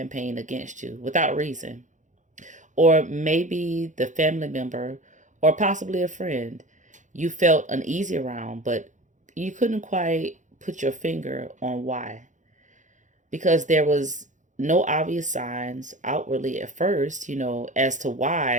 against you without reason. Or maybe the family member or possibly a friend you felt uneasy around, but you couldn't quite put your finger on why. Because there was no obvious signs outwardly at first, as to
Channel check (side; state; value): left; late; 0.36 ms